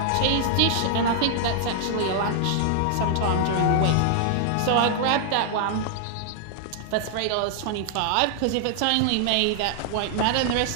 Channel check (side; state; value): both; different; correlation 0.00